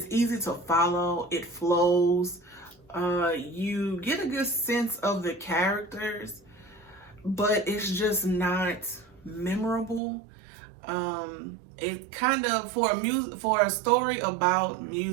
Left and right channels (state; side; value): drops out; left; at 10.0 s